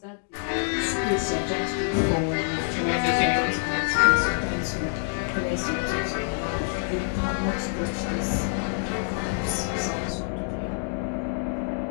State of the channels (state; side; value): silent; right; 57 dB below the other